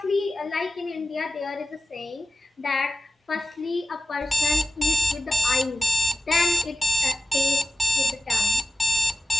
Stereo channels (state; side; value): normal; both; correlation 0.98